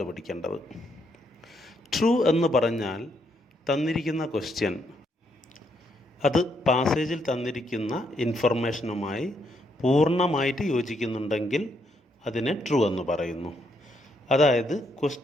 ട്രൂ എന്ന് പറഞ്ഞാൽ തന്നിരിക്കുന്ന ക്വസ്റ്റ്യൻ അത് പാസേജിൽ തന്നിരിക്കുന്ന ഇൻഫർമേഷനുമായി പൂർണ്ണമായിട്ട് യോജിക്കുന്നുണ്ടെങ്കിൽ അതിനെ ട്രൂ എന്ന് പറയുന്നു. അതായത്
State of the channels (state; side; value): normal; both; correlation 0.75